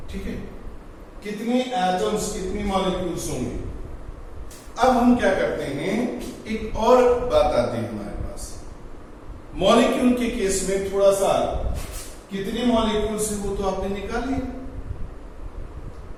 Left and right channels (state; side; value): identical; both; correlation 1.00